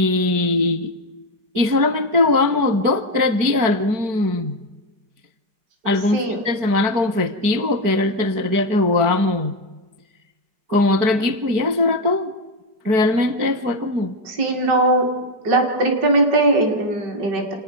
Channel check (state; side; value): late; left; 4.5 ms